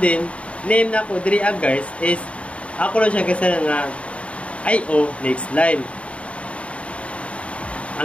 name na ko diri guys is ako lang siya kasi nga IO next line.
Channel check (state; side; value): late; right; 0.063 ms